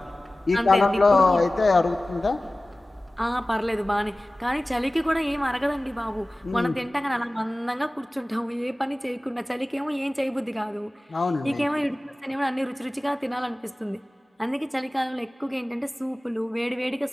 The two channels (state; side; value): normal; both; correlation 0.97